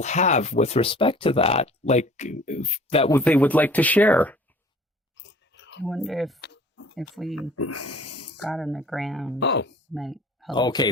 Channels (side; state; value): both; normal; correlation 0.49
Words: have with respect to that, like that they would like to share? I wonder if we got on the ground. Oh, might help. Okay,